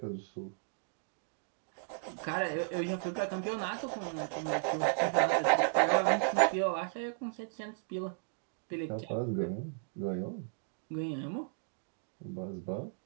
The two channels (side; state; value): left; silent; digital silence